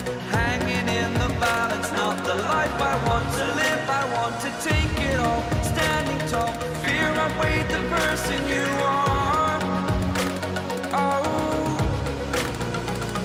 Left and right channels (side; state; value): both; identical; correlation 1.00